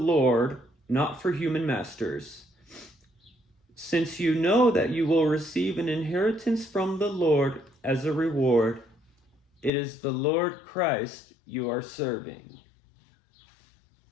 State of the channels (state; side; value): drops out; right; at 9.7 s